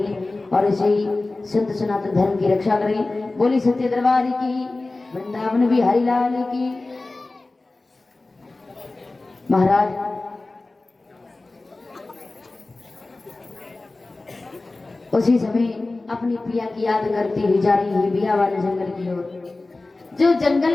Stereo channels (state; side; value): quieter; right; 3.2 dB